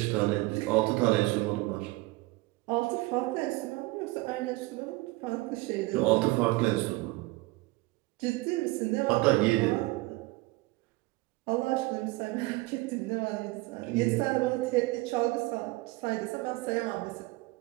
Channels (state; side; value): quieter; left; 22.0 dB